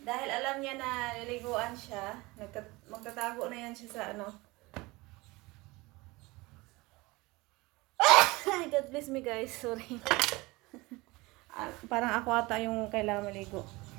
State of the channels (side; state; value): left; quieter; 22.7 dB